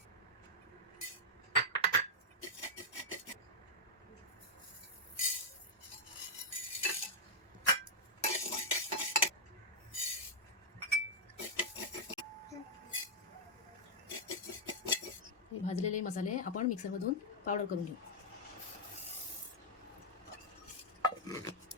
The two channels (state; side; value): normal; both; correlation -0.04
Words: हे भाजलेले मसाले आपण मिक्सरमधून पावडर करून घेऊ.